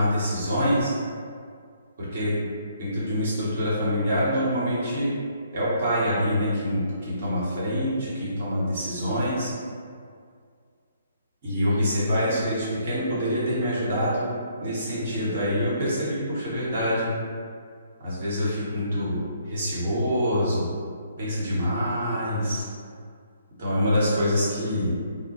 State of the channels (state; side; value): inverted; both; correlation -0.68